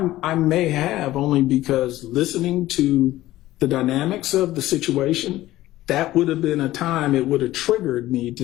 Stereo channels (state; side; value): quieter; right; 15.8 dB